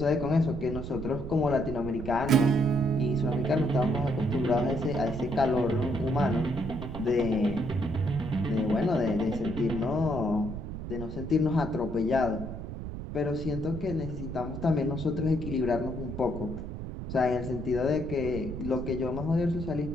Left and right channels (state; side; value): noise; right; rumble, 7 dB below the sound